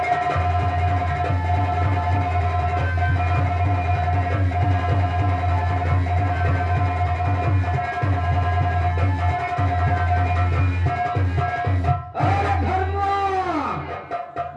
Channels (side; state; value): both; identical; correlation 1.00